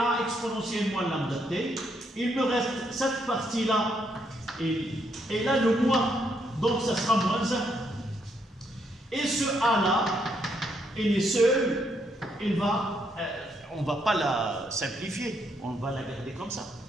exponentielle moins lambda t. Il me reste cette partie-là et là le moins. Donc, ça sera moins 1. Et ce A-là, il est seul, on ne va pas la simplifier, on va la garder comme ça.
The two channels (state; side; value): normal; both; correlation 0.75